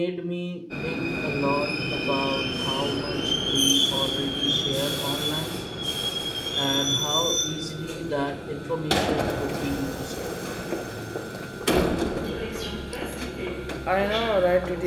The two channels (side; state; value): both; identical; correlation 1.00